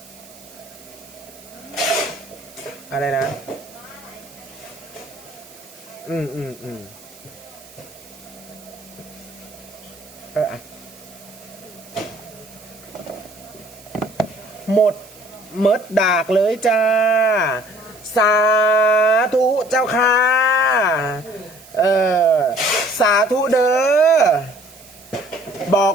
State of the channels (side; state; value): right; noise; hiss, 22 dB below the sound